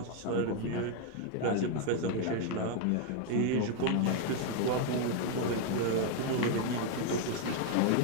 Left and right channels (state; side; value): different; both; correlation 0.01